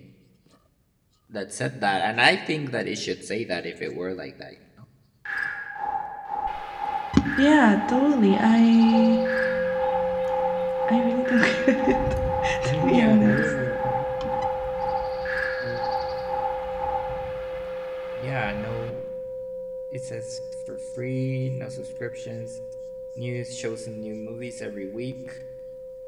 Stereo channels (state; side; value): identical; both; correlation 1.00